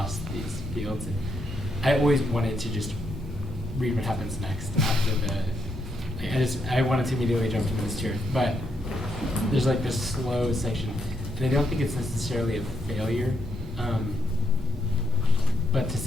these fields, and I always wanted to just read what happens next after I wanted to immediately jump to the tier, but there's like this slow section, and I don't think it's necessarily a failure, but to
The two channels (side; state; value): both; normal; correlation 0.78